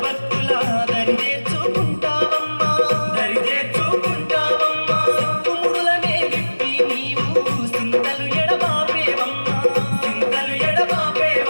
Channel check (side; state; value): both; inverted; correlation -1.00